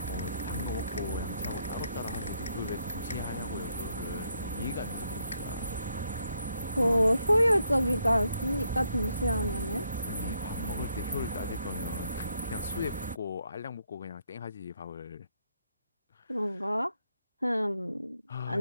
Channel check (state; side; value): inverted; both; correlation -0.75